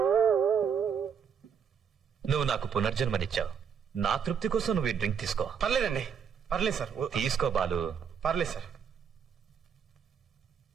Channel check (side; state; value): left; quieter; 7.2 dB